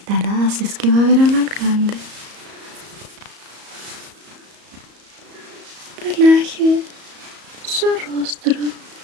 si es que va a ver al alcalde. Relaje su rostro.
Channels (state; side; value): late; left; 34 ms